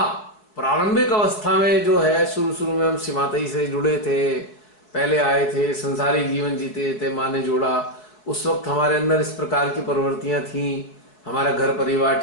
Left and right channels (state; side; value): late; right; 4.6 ms